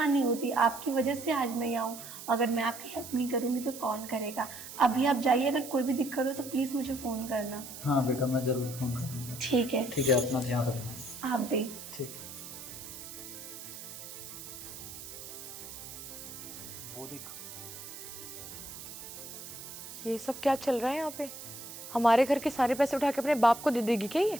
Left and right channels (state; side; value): noise; right; hiss, 12 dB below the sound